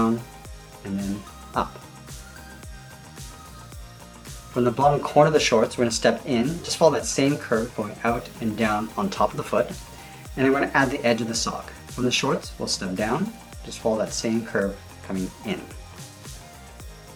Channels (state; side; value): identical; both; correlation 1.00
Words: and then up. From the bottom corner of the shorts, we're going to step in, just follow that same curve going out and down on top of the foot, and then we're going to add the edge of the sock. From the shorts, we'll step down, just follow that same curve coming in.